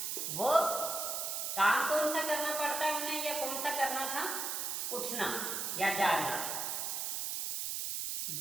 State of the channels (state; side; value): noise; right; hiss, 2 dB below the sound